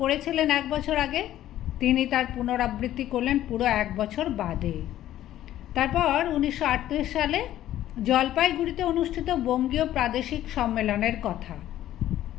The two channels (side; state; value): right; quieter; 13.0 dB